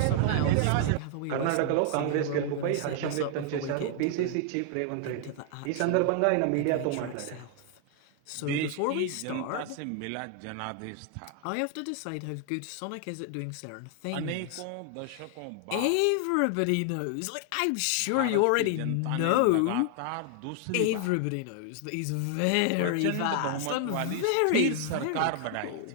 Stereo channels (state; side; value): different; both; correlation 0.00